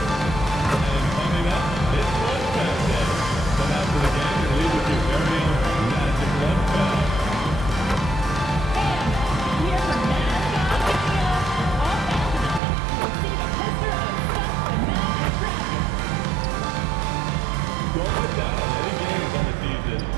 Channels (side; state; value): left; drops out; at 12.6 s